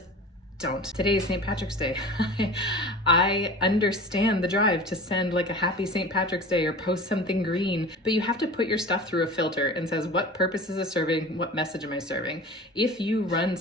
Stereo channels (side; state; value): both; normal; correlation 0.37